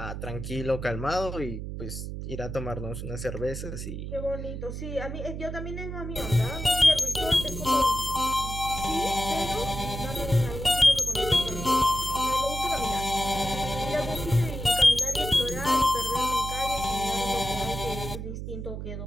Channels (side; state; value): right; noise; hum, 7 dB below the sound